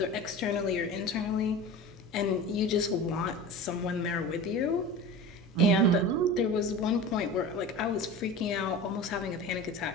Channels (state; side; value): normal; both; correlation 0.33